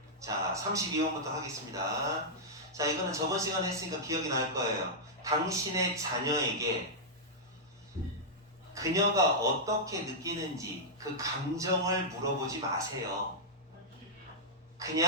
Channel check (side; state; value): both; normal; correlation -0.09